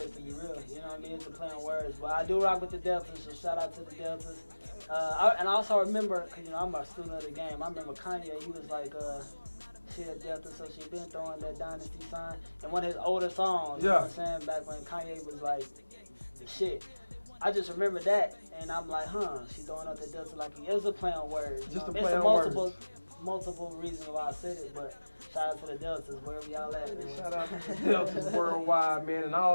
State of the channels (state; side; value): inverted; both; correlation -1.00